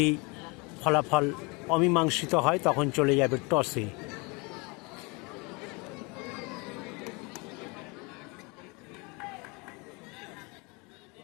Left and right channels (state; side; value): quieter; right; 28.6 dB